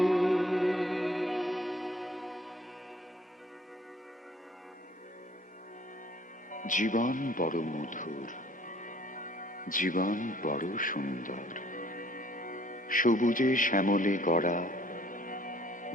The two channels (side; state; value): both; normal; correlation 0.58